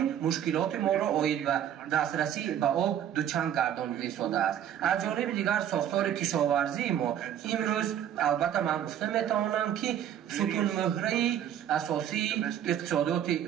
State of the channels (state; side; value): quieter; left; 10.2 dB